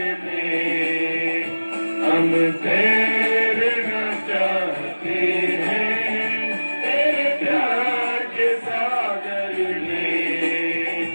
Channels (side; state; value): both; inverted; correlation -1.00